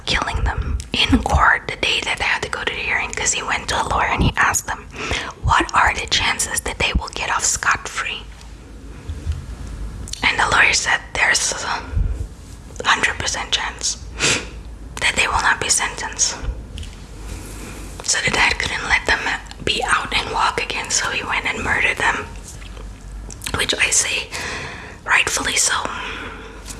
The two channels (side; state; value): both; identical; correlation 1.00